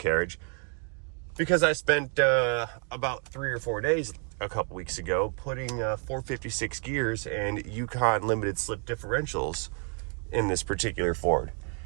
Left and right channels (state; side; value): quieter; left; 39.0 dB